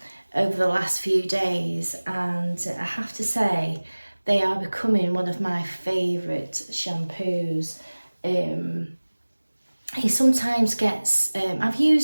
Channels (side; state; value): both; inverted; correlation -1.00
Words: the last few days, and I have to say they are becoming one of my favourite shampoos. He sometimes gets, I've